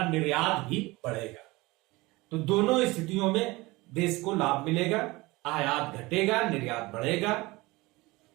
निर्यात भी बढ़ेगा। तो दोनों स्थितियों में देश को लाभ मिलेगा, आयात घटेगा, निर्यात बढ़ेगा।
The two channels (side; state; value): left; quieter; 21.9 dB